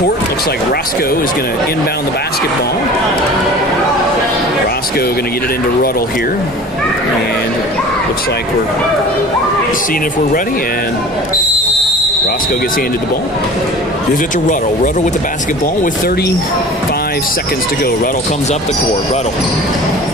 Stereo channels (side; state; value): both; normal; correlation 0.40